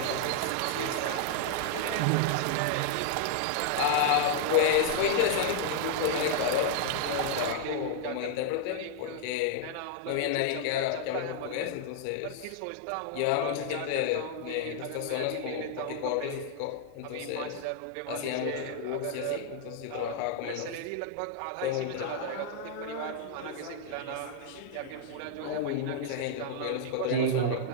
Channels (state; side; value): different; both; correlation 0.00